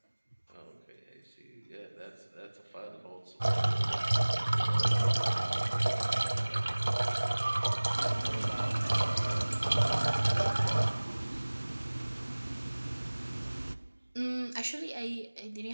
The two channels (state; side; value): inverted; both; correlation -1.00